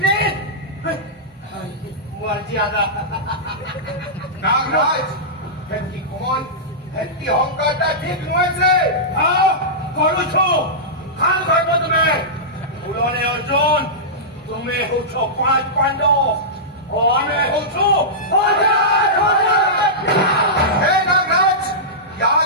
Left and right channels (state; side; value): normal; both; correlation -0.15